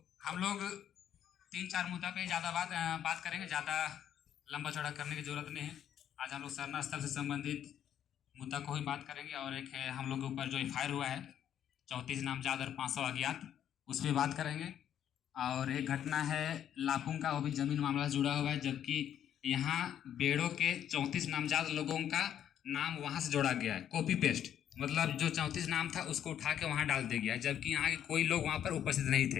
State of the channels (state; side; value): quieter; right; 10.0 dB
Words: हम लोग 3-4 मुद्दा पे ज़्यादा बात करेंगे, ज़्यादा लंबा चौड़ा करने की ज़रूरत नहीं है। आज हम लोग सरना स्थल से संबंधित मुद्दा को ही बात करेंगे और एक है हम लोग के ऊपर जो एफआईआर हुआ है 34 नामजद और 500 अज्ञात, उस पर बात करेंगे। और एक घटना है लापुंग का, वो भी जमीन मामला से जुड़ा हुआ है, जबकि यहाँ बेड़ो के 34 नामजद लोगों का नाम वहाँ से जोड़ा गया है, कॉपी पेस्ट, मतलब जो 34 नाम था उसको उठा के वहाँ डाल दिया गया, जबकि यहाँ के कोई लोग वहाँ पर उपस्थित नहीं